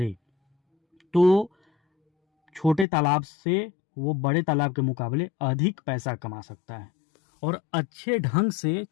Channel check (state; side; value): drops out; right; at 2.9 s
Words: तो छोटे तालाब से वो बड़े तालाब के मुकाबले अधिक पैसा कमा सकता है। और अच्छे ढंग से